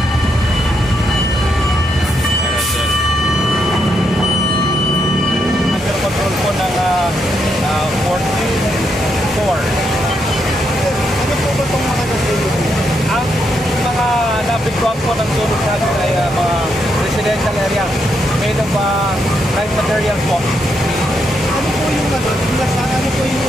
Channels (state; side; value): normal; both; correlation 0.79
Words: control po ng 44. Ano po ba itong mga nasunog? Ang mga nabigwang po ng sunog natin ay mga residential area made of light materials po. Ano po yung